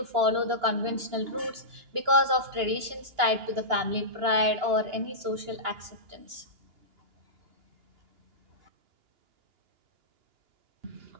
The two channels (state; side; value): late; left; 2.9 ms